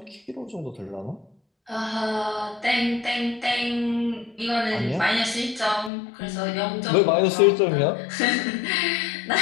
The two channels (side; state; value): right; drops out; at 5.9 s